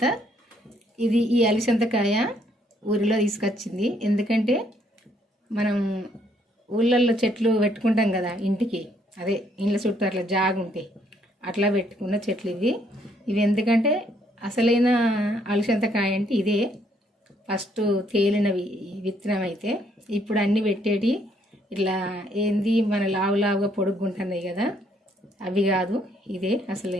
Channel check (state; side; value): normal; both; correlation 0.69